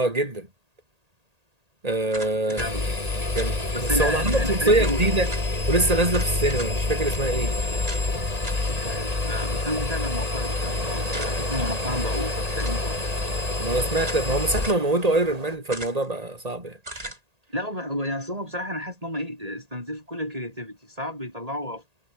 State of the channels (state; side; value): late; left; 1.8 ms